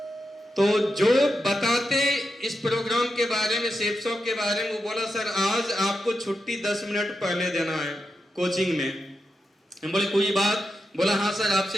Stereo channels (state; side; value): normal; both; correlation 0.88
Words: तो जो बताते इस प्रोग्राम के बारे में, सेफ शॉप के बारे में, वो बोला सर आज आपको छुट्टी 10 मिनट पहले देना है कोचिंग में। हम बोले कोई बात? बोला हाँ सर